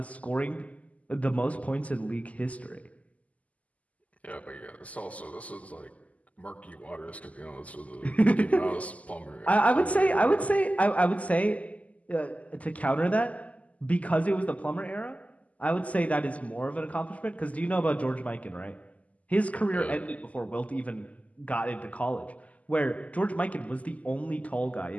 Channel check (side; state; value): right; late; 0.071 ms